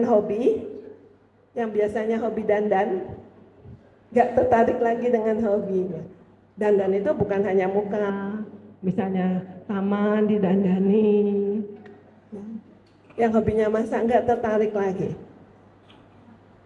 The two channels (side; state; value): both; identical; correlation 1.00